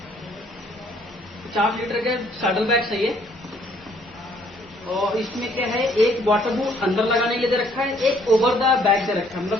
50 लीटर के सैडल बैग्स है ये। और इसमें क्या है, एक वाटरप्रूफ अंदर लगाने के लिए दे रखा है, एक ओवर द बैग दे रखा है,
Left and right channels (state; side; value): normal; both; correlation 0.63